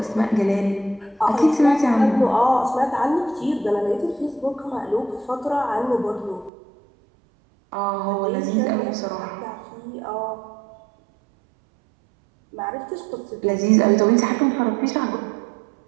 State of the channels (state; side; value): drops out; left; at 6.5 s